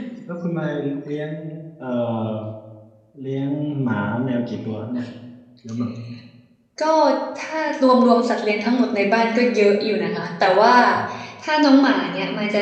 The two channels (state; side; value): identical; both; correlation 1.00